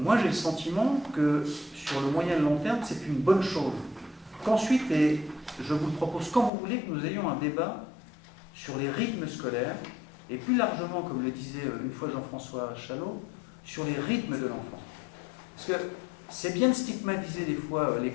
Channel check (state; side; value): drops out; right; at 6.5 s